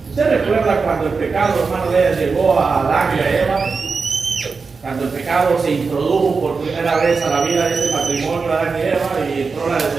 ¿Usted recuerda cuando el pecado, hermano, llegó a Adán y a Eva? Cuando el pecado se introdujo por primera vez a la vida de este matrimonio, Adán y Eva, y entró la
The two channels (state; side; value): quieter; left; 4.7 dB